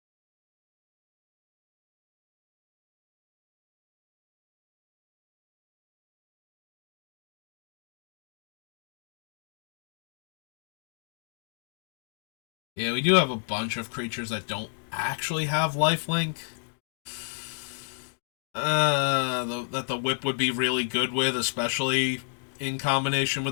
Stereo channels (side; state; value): right; silent; digital silence